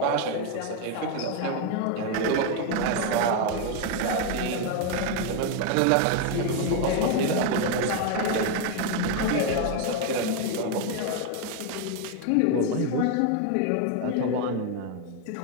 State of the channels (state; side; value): different; both; correlation 0.01